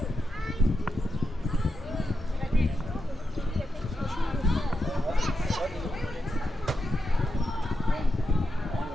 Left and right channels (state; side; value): normal; both; correlation 0.86